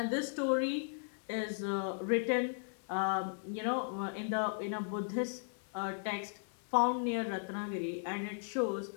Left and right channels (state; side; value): silent; right; 53 dB below the other